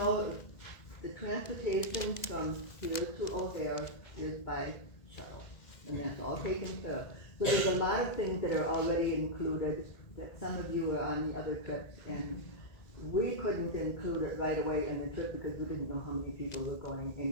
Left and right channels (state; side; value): late; right; 2.0 ms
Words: the transportation from here to O'Hare is by shuttle, and that's all taken care of. So there's a lot of things that are already included that some of you are on the other trips, and we couldn't include it right away in the trip because we didn't know how many people were going,